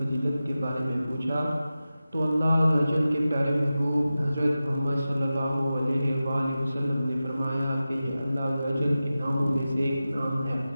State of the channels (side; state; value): both; inverted; correlation -0.94